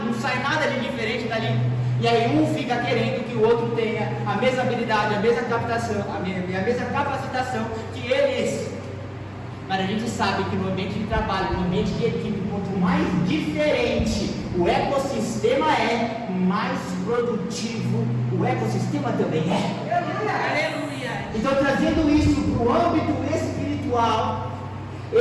não sai nada de diferente dali. E aí um fica querendo que o outro tenha a mesma habilidade, a mesma captação, a mesma capacitação que eles. Mas a gente sabe que no ambiente de trabalho, no ambiente de equipe, quanto mais diferente o ecossistema é, mais produtivo o ecossistema também é. Aleluia! Então, trazendo isso para o âmbito espiritual,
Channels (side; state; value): both; identical; correlation 1.00